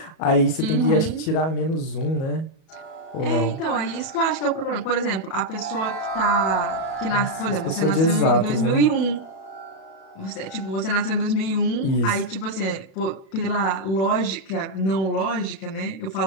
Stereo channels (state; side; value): late; right; 37 ms